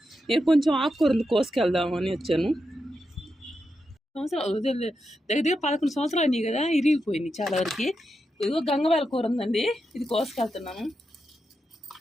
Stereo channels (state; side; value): normal; both; correlation 0.87